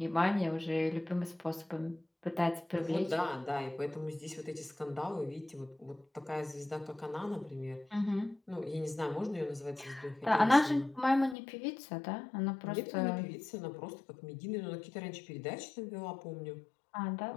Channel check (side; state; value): right; drops out; at 11.4 s